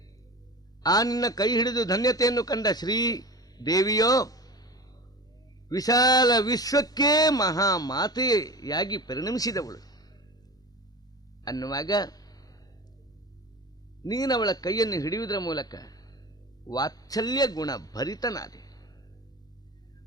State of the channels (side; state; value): both; normal; correlation 0.33